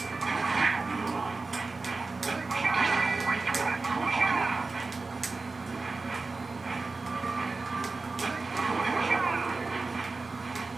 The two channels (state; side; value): quieter; left; 3.8 dB